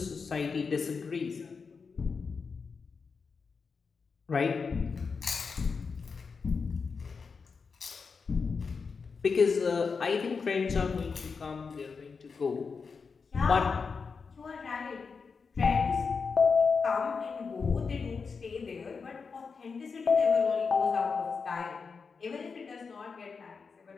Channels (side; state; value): right; quieter; 5.2 dB